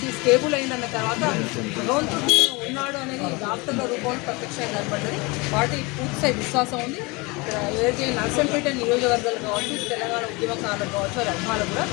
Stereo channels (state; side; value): quieter; right; 26.1 dB